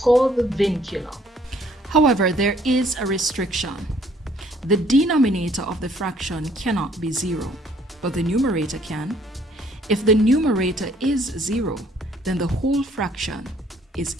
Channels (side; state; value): both; normal; correlation 0.61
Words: the vincula. However, there is a restriction. The denominator of the fraction cannot be 0, but the numerator can. If the numerator is 0, then the whole fraction is